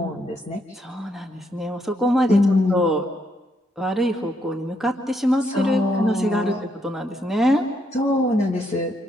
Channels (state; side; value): normal; both; correlation 0.75